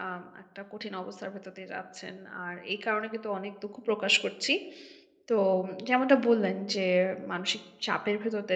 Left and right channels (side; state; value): both; identical; correlation 1.00